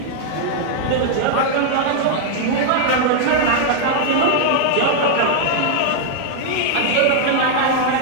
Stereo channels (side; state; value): both; different; correlation 0.00